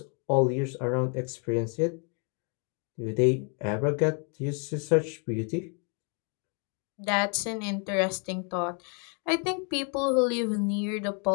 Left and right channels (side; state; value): right; quieter; 38.5 dB